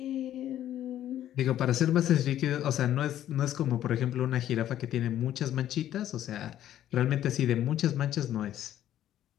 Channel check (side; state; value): right; quieter; 11.8 dB